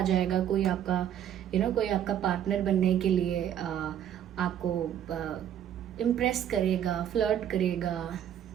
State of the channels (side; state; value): left; quieter; 10.1 dB